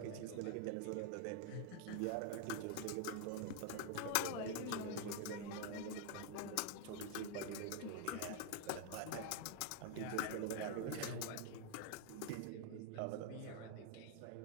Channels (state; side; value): different; both; correlation 0.00